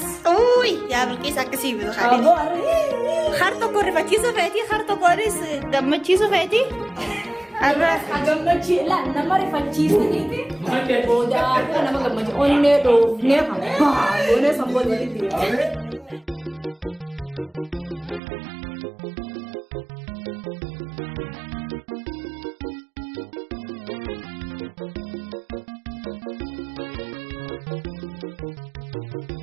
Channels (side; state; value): left; drops out; at 18.2 s